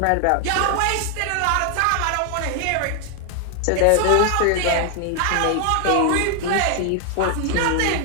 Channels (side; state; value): both; different; correlation 0.00